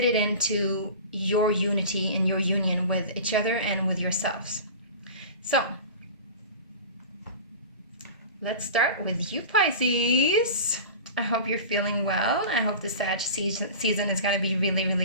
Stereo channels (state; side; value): inverted; both; correlation -0.34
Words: it into your unity and your union with each other and with yourselves. So let's start with you, Pisces. I hope you're feeling well. I hope the Sag season is going to be really,